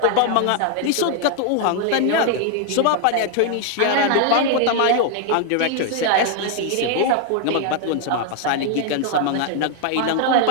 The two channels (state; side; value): different; both; correlation 0.00